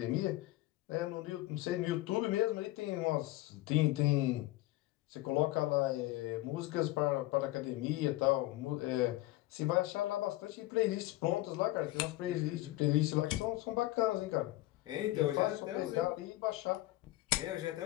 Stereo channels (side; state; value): right; quieter; 17.8 dB